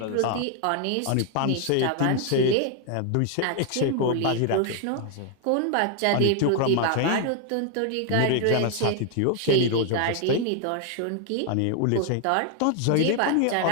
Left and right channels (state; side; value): different; both; correlation 0.00